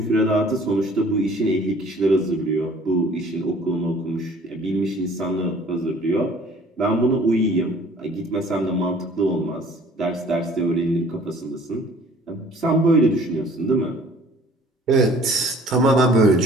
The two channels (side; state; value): both; normal; correlation 0.52